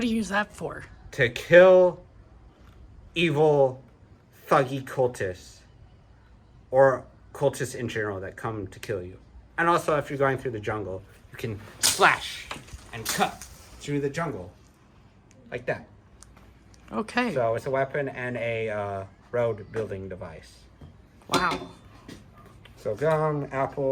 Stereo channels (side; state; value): both; identical; correlation 1.00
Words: do you use that for? to kill evil, thuggy cultists, or cultists in general that come to kill you. And also, if you're going through the jungle, you can slash and cut through the jungle like that. Okay. So it's a weapon and a road building device. Wow. So gum,